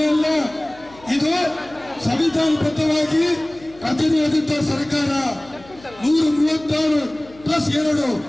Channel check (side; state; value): left; noise; hum, 23 dB below the sound